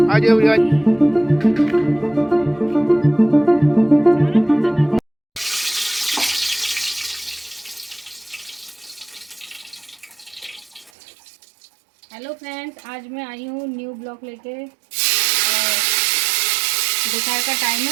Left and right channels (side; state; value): left; drops out; at 10.9 s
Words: आ जाओ यार। हेलो फ्रेंड्स, आज मैं आई हूँ न्यू ब्लॉग लेके। और दोपहर का टाइम